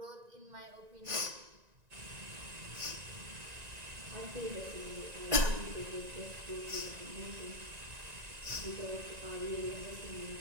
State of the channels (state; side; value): late; left; 1.9 ms